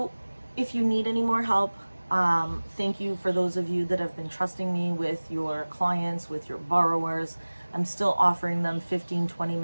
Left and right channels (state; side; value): inverted; both; correlation -1.00